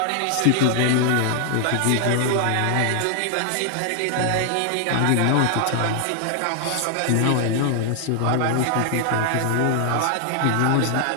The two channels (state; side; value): different; both; correlation 0.00